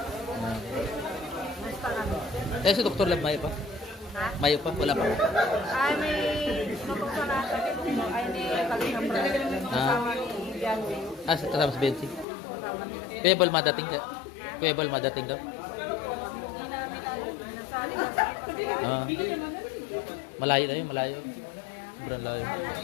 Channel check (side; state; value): right; drops out; at 12.2 s